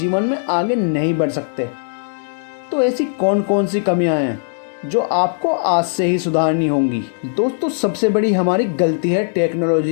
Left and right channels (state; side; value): silent; right; digital silence